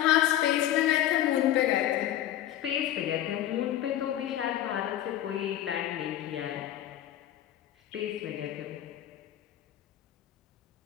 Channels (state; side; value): quieter; right; 12.4 dB